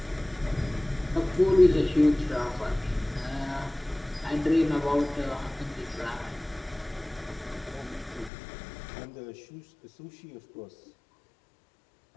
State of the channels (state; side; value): drops out; right; at 8.3 s